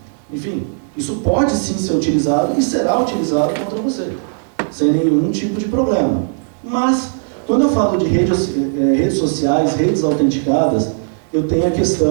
enfim, isso pode sim ser utilizado e será utilizado contra você, sem nenhum tipo de problema. Mas, quando eu falo de redes sociais, redes autenticadas, eu tenho a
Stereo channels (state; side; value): silent; left; digital silence